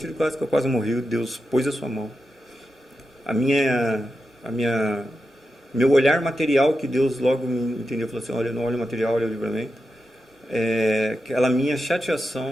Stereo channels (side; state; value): both; normal; correlation 0.89